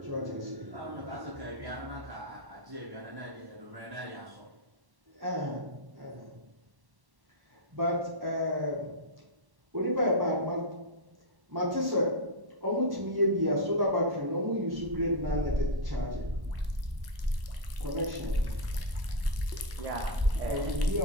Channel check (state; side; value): late; left; 1.1 ms